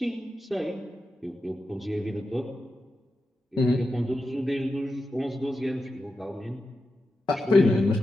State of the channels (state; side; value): normal; both; correlation 0.90